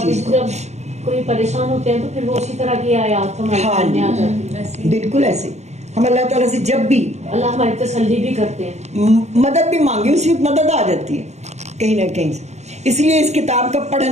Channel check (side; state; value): left; late; 0.33 ms